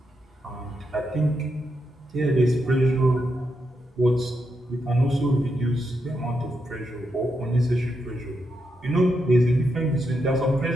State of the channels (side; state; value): both; normal; correlation 0.83